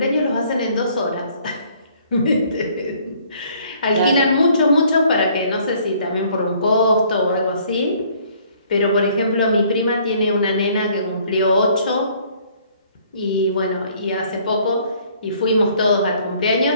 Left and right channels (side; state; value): both; inverted; correlation -0.60